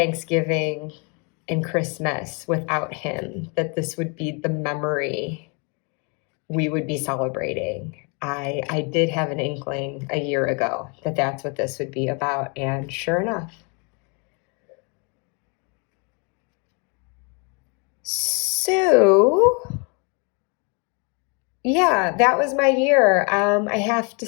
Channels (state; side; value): quieter; right; 34.1 dB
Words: and Christmas without him, that this would be the memory we would be celebrating. I did have an inkling a year ago that that's what this would be about, and sure enough. So, yeah, that was my year. I have to